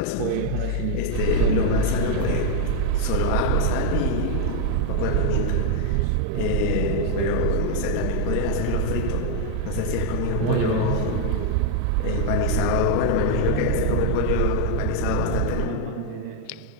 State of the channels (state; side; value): different; both; correlation 0.00